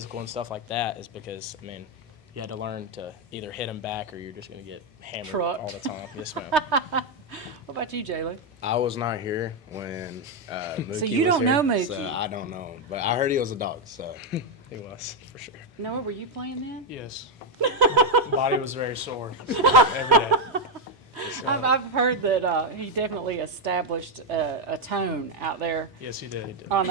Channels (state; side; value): normal; both; correlation 0.04